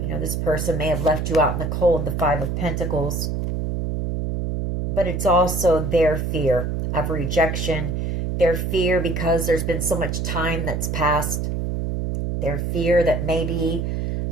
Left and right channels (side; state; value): right; noise; hum, 1 dB below the sound